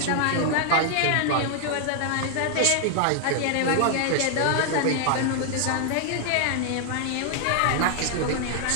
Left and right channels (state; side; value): different; both; correlation 0.00